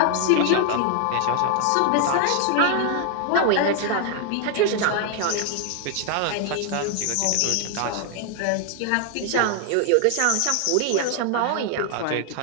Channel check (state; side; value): different; both; correlation 0.00